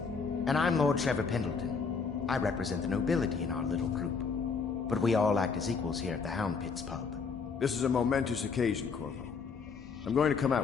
And I'm Lord Trevor Pendleton. I represent the nobility in our little group. But we all act as equals here at the Hound Pit's pub. This is a momentous occasion, Corvo. I'm going to come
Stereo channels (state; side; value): quieter; right; 5.3 dB